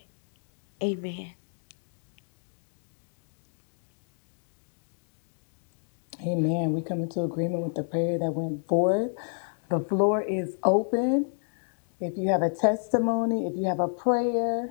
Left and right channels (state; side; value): silent; right; digital silence